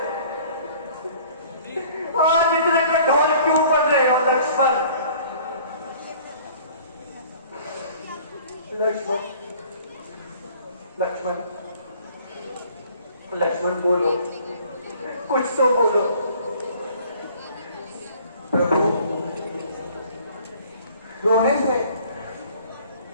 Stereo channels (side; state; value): both; inverted; correlation -0.52